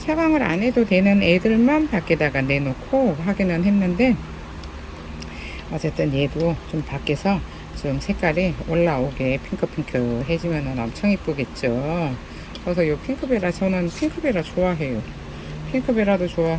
안 해도 되는 애들만 밖에다가 내놓고 하기는 했는데, 어쨌든 얘도 좀 밖에서 좀 색깔이 올라오게 핑크핑크 해지면 엄청 이쁘겠죠. 그래서 요 핑크베라, 저는 핑크베라 좋아해요. 핑크베라도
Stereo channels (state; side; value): identical; both; correlation 1.00